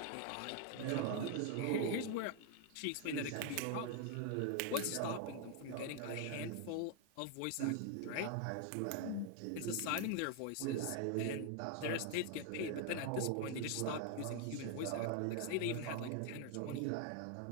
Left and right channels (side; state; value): both; different; correlation 0.00